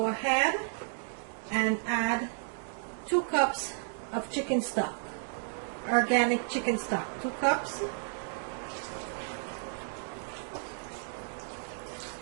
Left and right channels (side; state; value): left; silent; digital silence